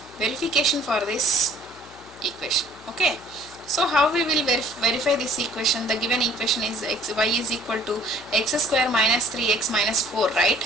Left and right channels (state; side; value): noise; left; hum, 23 dB below the sound